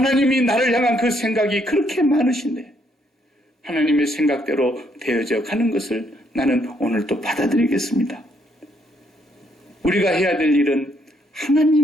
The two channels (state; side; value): normal; both; correlation 0.71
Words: 나를 향한 그 생각이 그렇게 많으신데 하나님의 생각대로 되어져 가는 것을 나는 오늘 또 받아들이겠습니다. 우리가 해야 될 일은